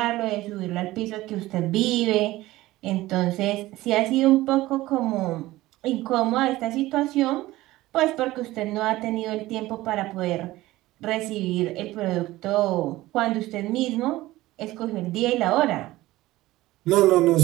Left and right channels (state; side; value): quieter; left; 17.4 dB